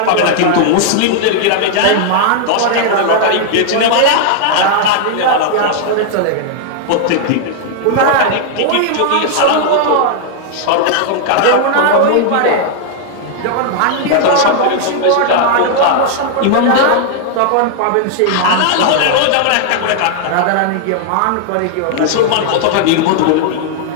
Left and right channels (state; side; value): different; both; correlation -0.01